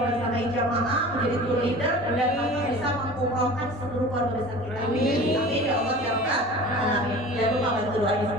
jamaah, menjadi tour leader, dan bisa mengumrohkan seluruh keluarga besar kita. Amin. Amin ya Allah ya Rabbal Alamin. Jangan lupa bantu doanya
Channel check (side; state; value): both; normal; correlation 0.39